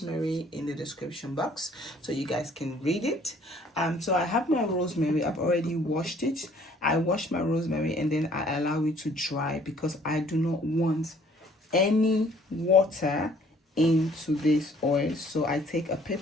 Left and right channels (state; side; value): normal; both; correlation 0.59